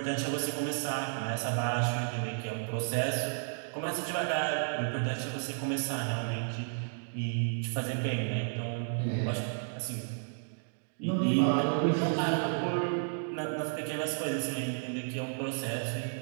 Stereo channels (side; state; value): left; silent; digital silence